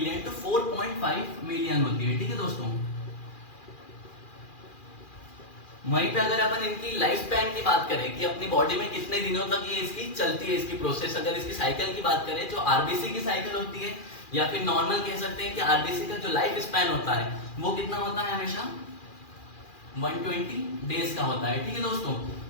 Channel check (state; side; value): late; right; 2.4 ms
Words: टू 4.5 मिलियन होती है। ठीक है दोस्तों, वहीं पे अगर अपन इनकी लाइफ स्पैन की बात करें कि अपनी बॉडी में कितने दिनों तक ये इसकी चलती है इसकी प्रोसेस, अगर इसकी साइकिल की बात करें जो आरबीसी की साइकिल होती है, या फिर नॉर्मल कह सकते हैं कि आरबीसी का जो लाइफ स्पैन होता है वो कितना होता है, हमेशा 120 डेज का होता है। ठीक है दोस्तों,